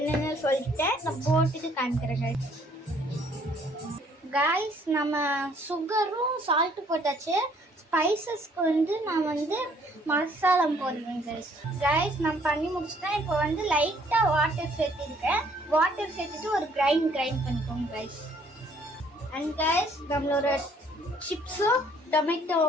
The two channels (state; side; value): normal; both; correlation 0.62